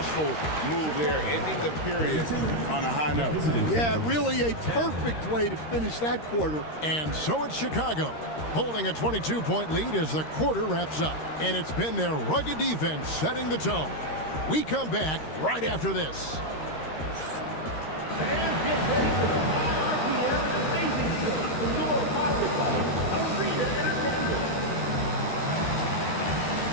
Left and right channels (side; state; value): right; late; 13 ms